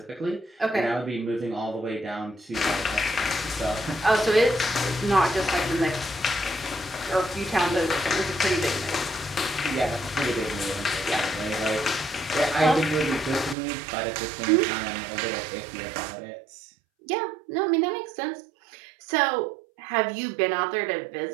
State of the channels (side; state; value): left; drops out; at 13.6 s